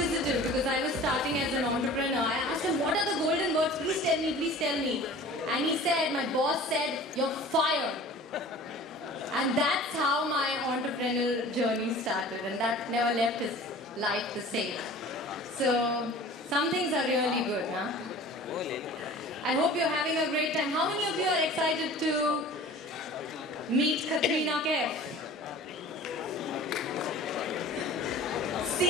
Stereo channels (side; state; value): both; normal; correlation 0.42